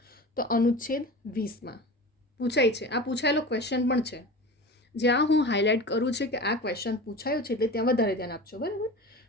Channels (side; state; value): both; normal; correlation 0.33